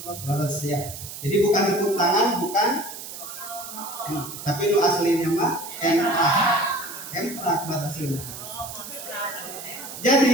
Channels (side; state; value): right; noise; hiss, 11 dB below the sound